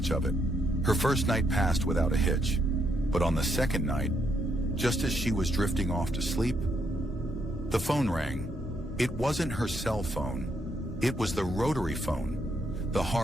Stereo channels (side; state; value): both; normal; correlation 0.76